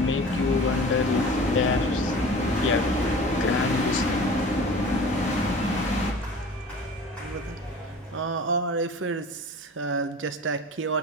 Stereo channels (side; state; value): both; normal; correlation 0.40